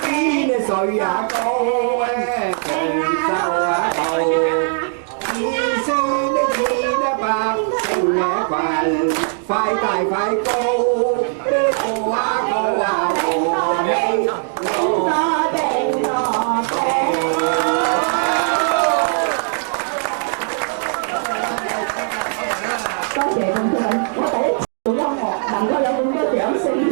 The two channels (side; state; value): left; silent; 56 dB below the other